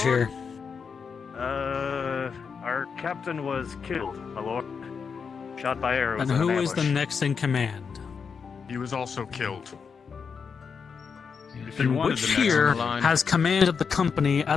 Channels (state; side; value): quieter; right; 5.9 dB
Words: here? Our captain was killed, my lord. Shot by arrows. And in an who is the ambush. next in command? He was also killed. If you And wanted which the next on here the line- has command of the company